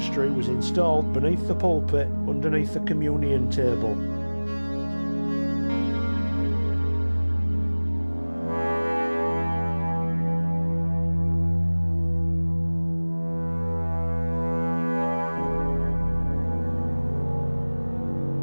was installed beneath the pulpit underneath the communion table.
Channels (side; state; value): both; inverted; correlation -1.00